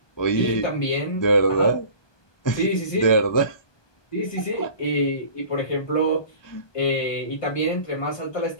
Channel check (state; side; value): late; right; 1.2 ms